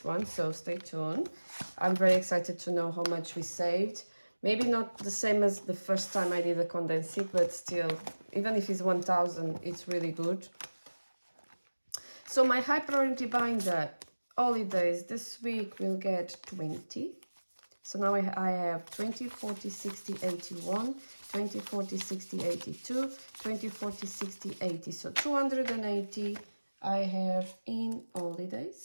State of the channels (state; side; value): inverted; both; correlation -1.00